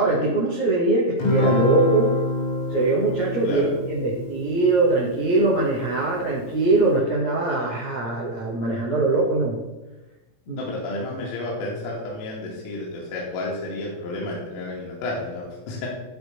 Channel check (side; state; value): right; late; 17 ms